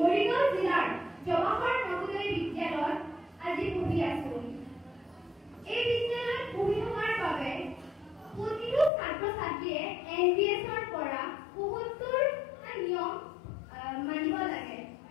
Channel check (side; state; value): right; drops out; at 8.9 s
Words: জিলাৰ জৱাহৰ নৱোদয় বিদ্যালয়ত আজি পঢ়ি আছো। এই বিদ্যালয়ত পঢ়ি থকাৰ বাবে প্ৰতিটো ছাত্ৰ ছাত্ৰীয়ে NBSৰ পৰা ৭৫টা নিয়ম মানিব লাগে।